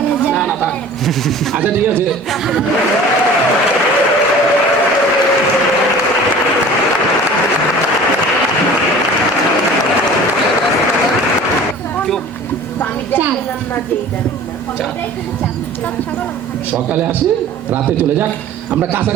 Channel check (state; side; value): normal; both; correlation 0.43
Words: না না থাক, আচ্ছা ঠিক আছে। সকালে আসে রাতে চলে যাক, আমরা